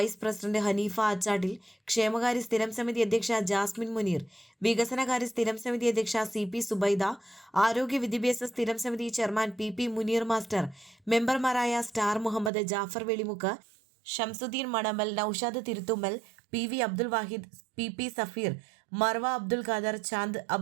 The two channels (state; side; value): drops out; left; at 12.5 s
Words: പ്രസിഡന്റ് ഹനീഫ ആച്ചാട്ടിൽ, ക്ഷേമകാര്യ സ്ഥിരം സമിതി അധ്യക്ഷ ജാസ്മിൻ മുനീർ, വികസനകാര്യ സ്ഥിരം സമിതി അധ്യക്ഷ CP സുബൈദ, ആരോഗ്യ വിദ്യാഭ്യാസ സ്ഥിരം സമിതി ചെയർമാൻ PP മുനീർ മാസ്റ്റർ, മെമ്പർമാരായ star Muhammad, Jafar Velimukku, Shamsuddin Manamal, Naushad Thiruthummal, PV Abdul Wahid, PP Safeer, Marva Abdul Khader, Chand